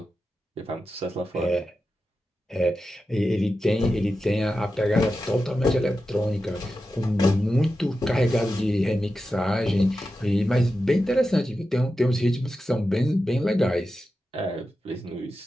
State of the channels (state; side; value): normal; both; correlation 0.91